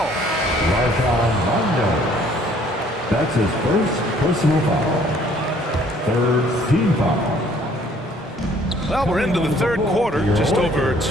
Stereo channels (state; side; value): normal; both; correlation 0.59